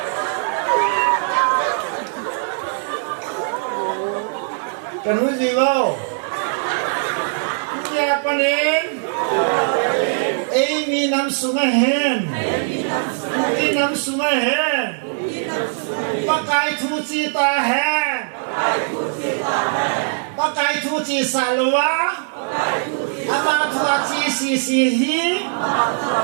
kan uji wow, siapa nih? Ini nam sungai hen, ini nam sungai hen, pakai cuci tahen. Pakai cuci salwa, apa cuci sisihi,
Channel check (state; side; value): silent; left; digital silence